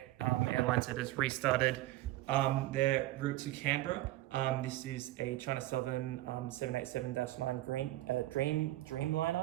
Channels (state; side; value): quieter; left; 16.5 dB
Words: that has restarted their route to Canberra. This is a China Southern 787-9